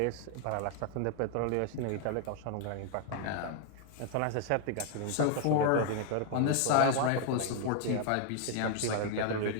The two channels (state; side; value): different; both; correlation 0.00